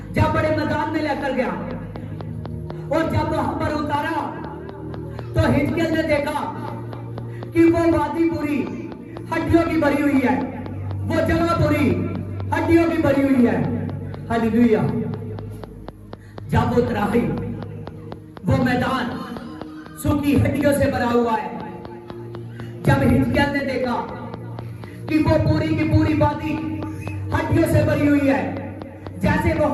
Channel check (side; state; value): both; identical; correlation 1.00